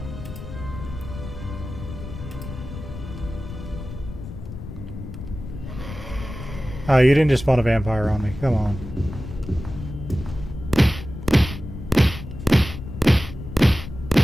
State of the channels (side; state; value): left; noise; rumble, 10 dB below the sound